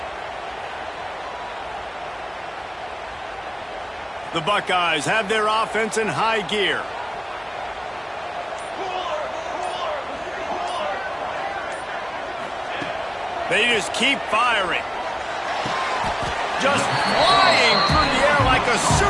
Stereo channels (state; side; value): identical; both; correlation 1.00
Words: The Buckeyes have their offense in high gear. They just keep firing. Just flying through the air like a